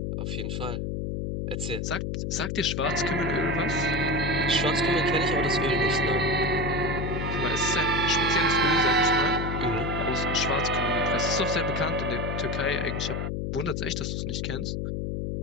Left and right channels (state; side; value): noise; left; hum, 2 dB below the sound